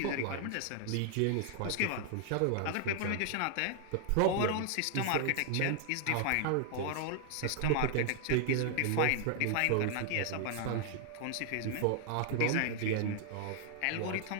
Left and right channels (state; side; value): different; both; correlation 0.00